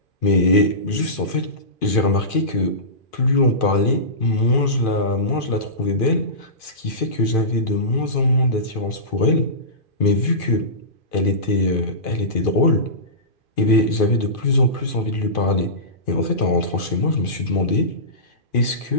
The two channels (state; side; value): late; right; 2.5 ms